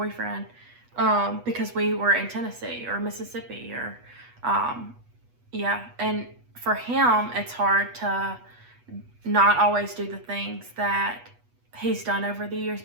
because we were in Tennessee or Mississippi or, and for him, it's hard to not always do the things that he's done over the years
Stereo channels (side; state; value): left; late; 8.2 ms